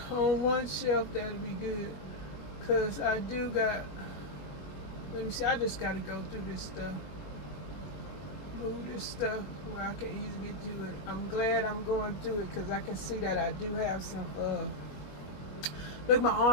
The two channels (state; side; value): late; right; 21 ms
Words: on one shelf, that'd be good. Cause I do got, let me see, I just gotta go through this stuff. Move this stuff where I can easily get to it. I'm glad I'm going through it because I can see that I do have Look, my